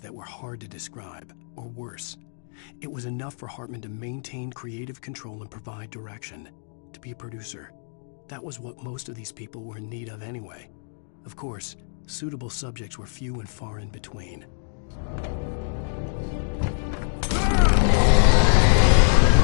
were hard to describe, or worse. It was enough for Hartman to maintain creative control and provide direction, to be a producer. That was what most of these people were in need of anyway. Of course, suitable subjects were few and far in between.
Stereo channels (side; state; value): right; silent; digital silence